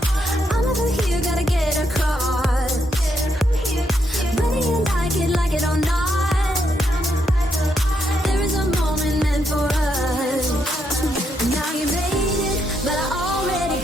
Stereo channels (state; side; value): normal; both; correlation 0.79